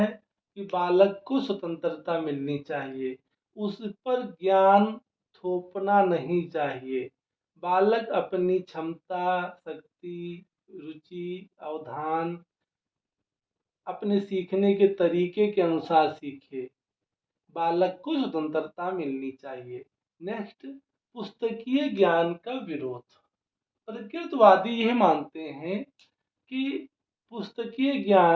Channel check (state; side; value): identical; both; correlation 1.00